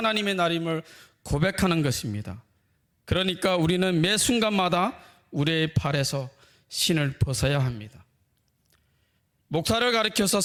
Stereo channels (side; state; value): both; identical; correlation 1.00